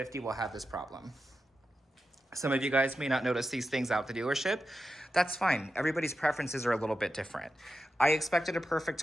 will have this problem. Some of you guys may not notice these things out the dealership. That's fine. Everybody's preferences are a little bit different. I expected a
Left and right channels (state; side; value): normal; both; correlation 0.90